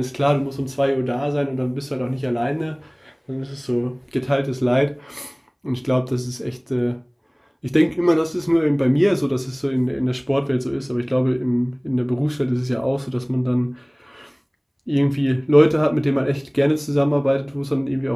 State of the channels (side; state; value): both; identical; correlation 1.00